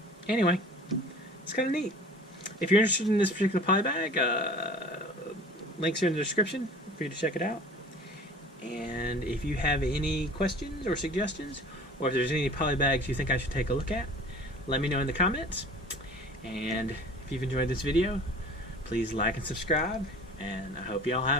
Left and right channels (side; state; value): both; normal; correlation 0.44